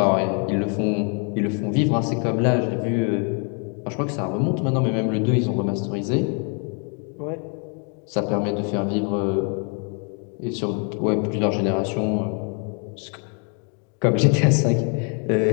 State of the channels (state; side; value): quieter; right; 40.0 dB